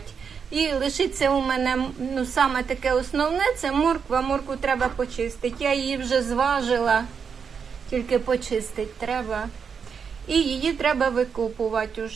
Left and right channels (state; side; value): quieter; left; 6.4 dB